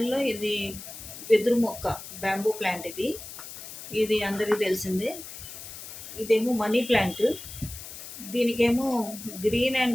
ఇది వెదురు మొక్క, బ్యాంబూ ప్లాంట్ ఇది. ఇది అందరికీ తెలిసిందే. ఇదేమో మనీ ప్లాంట్. దీనికేమో గ్రీన్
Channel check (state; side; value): noise; left; hiss, 12 dB below the sound